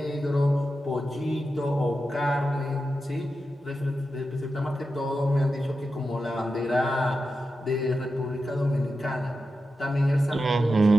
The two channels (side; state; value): both; normal; correlation 0.90